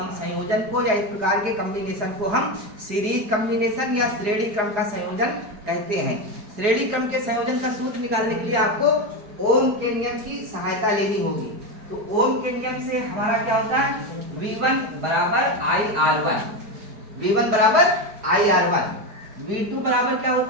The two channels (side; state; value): left; late; 4.8 ms